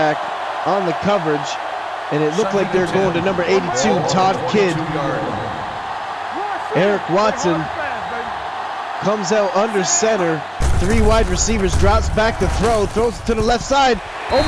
on the coverage. And it looked like they're going to number 82, Todd Kidd. Eric Watson comes out under center. 3 wide receivers, drops back to throw, throws it to the left side.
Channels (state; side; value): identical; both; correlation 1.00